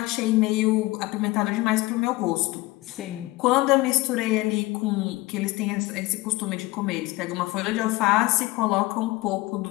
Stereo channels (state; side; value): quieter; right; 20.2 dB